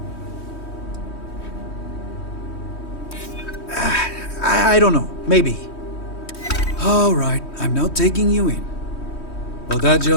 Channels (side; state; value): right; late; 3.2 ms